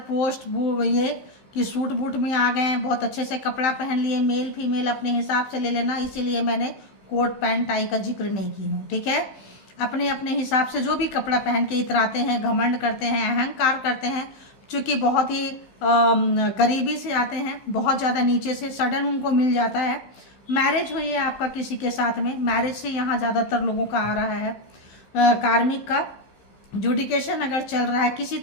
ये कि सूट बूट में आ गए हैं, बहुत अच्छे से कपड़ा पहन लिए। मेल फीमेल अपने हिसाब से ले लेना, इसीलिए मैंने कोट पैंट टाई का जिक्र नहीं की हूँ, ठीक है। अपने अपने हिसाब से जो भी कपड़ा पहन के इतराते हैं, घमंड करते हैं, अहंकार करते हैं, चूँकि बहुत ही गरीबी से आते हैं, बहुत ज़्यादा नीचे से सडन उनको मिल जाता है। मैरिज हुई है आपका किसी के साथ में, मैरिज से यहाँ ज़्यादातर लोगों का आ रहा है। कार्मिक का जुडिकेशन अगर चल रहा है, किसी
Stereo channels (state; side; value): late; right; 15 ms